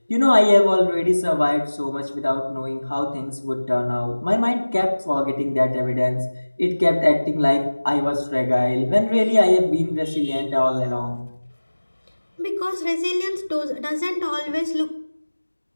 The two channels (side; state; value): both; inverted; correlation -1.00